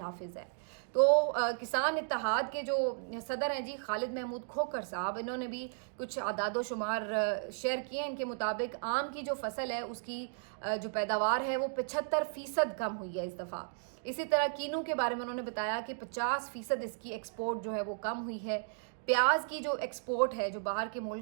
ہے. تو کسان اتحاد کے جو صدر ہیں جی خالد محمود کھوکھر صاحب, انہوں نے بھی کچھ اعداد و شمار شیئر کیے ہیں. ان کے مطابق آم کی جو فصل ہے اس کی جو پیداوار ہے وہ 75% کم ہوئی ہے اس دفعہ. اسی طرح کینو کے بارے میں انہوں نے بتایا کہ 50% اس کی ایکسپورٹ جو ہے وہ کم ہوئی ہے. پیاز کی جو ایکسپورٹ ہے, جو باہر کے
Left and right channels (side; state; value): left; silent; digital silence